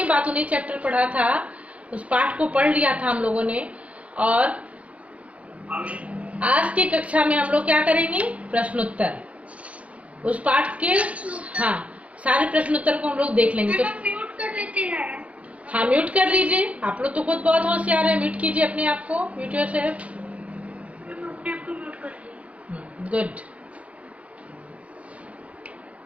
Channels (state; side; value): late; left; 0.064 ms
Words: बातूनी चैप्टर पढ़ा था, उस पाठ को पढ़ लिया था हम लोगों ने। और आज की कक्षा में हम लोग क्या करेंगे? प्रश्नोत्तर। उस पाठ के हाँ सारे प्रश्नोत्तर को हम लोग देख लेंगे। तो म्यूट कर लेते हैं। हाँ, म्यूट कर लीजिए। आप लोग तो खुद बहुत होशियार है, म्यूट कीजिए अपने आप को। Mute yourself. Good.